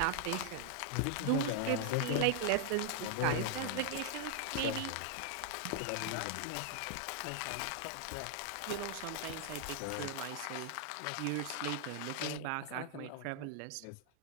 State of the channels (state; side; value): different; both; correlation 0.00